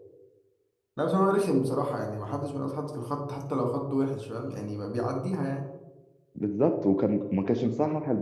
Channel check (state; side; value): identical; both; correlation 1.00